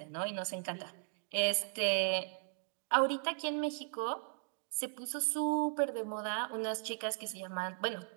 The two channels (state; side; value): silent; left; digital silence